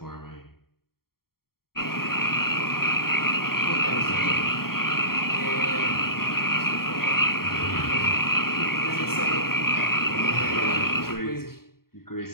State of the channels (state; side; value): late; right; 0.93 ms